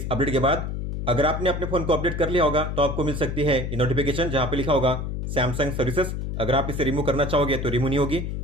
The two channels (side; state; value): left; noise; hum, 4 dB below the sound